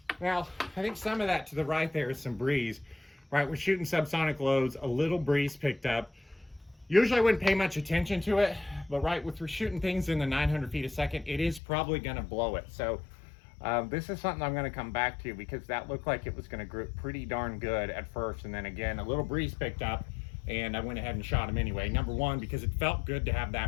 Now, I think some of that to the right there is some breeze, right? We're shooting subsonic loads, a little breeze picked up. Usually I wouldn't pay much attention to it, but right, if we're shooting things in the 900 feet a second, it is probably gonna blow it. So this is something I'm gonna come back to, because that looked like it was gonna grip pretty darn good at first. And then again, a little breeze picked up, and I went ahead and shot him anyway. Number one, because it felt good to have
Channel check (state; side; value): drops out; right; at 11.6 s